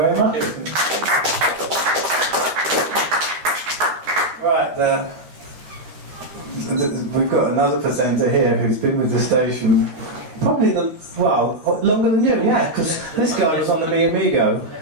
much. Right, we've got another presenter here who's been with the station probably longer than you, yeah, because this guy was on the Mi Amigo.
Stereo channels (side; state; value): left; late; 12 ms